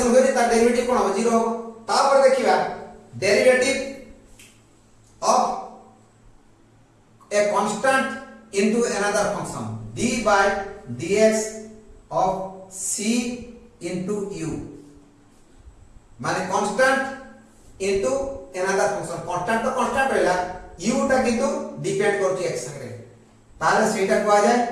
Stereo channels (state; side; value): identical; both; correlation 1.00